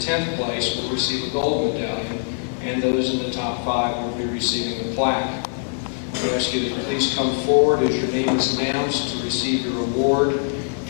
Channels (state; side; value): silent; right; digital silence